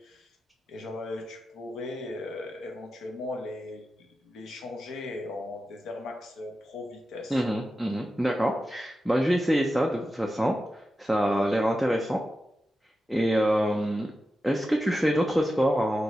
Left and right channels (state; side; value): normal; both; correlation 0.91